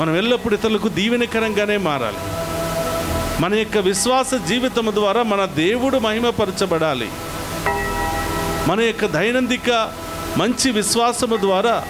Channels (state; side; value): identical; both; correlation 1.00